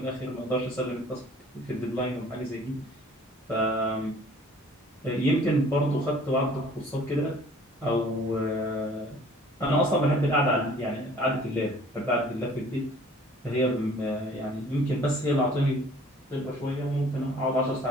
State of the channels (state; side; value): normal; both; correlation 0.52